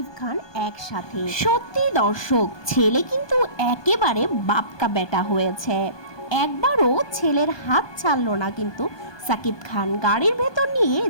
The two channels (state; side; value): late; right; 1.2 ms